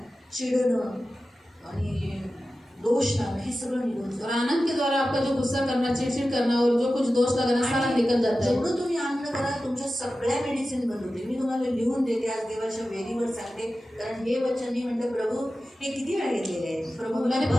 चिडणं आणि दोष लावणं हे सगळं निघून जातं। और आनंद के द्वारा आपका जो गुस्सा करना, चिड़चिड़ करना और जो कुछ दोष लगना सारा निकल जाता है। जेवढं तुम्ही आनंद करा तुमच्या सगळ्या मेडिसिन बंद होते। मी तुम्हाला लिहून देते आज देवाच्या वेदीवर सांगते, कारण हे वचन मी म्हणते प्रभू हे किती वेळा घेतलेले आहे, प्रभू मैंने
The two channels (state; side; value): normal; both; correlation 0.94